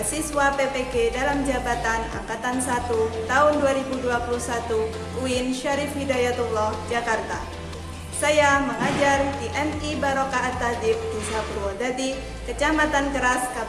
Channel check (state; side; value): identical; both; correlation 1.00